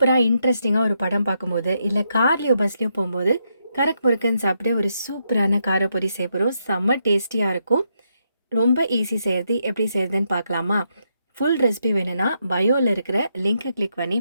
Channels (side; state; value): both; inverted; correlation -0.79